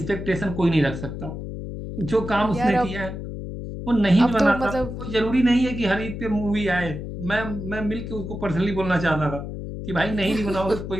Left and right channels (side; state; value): left; noise; hum, 7 dB below the sound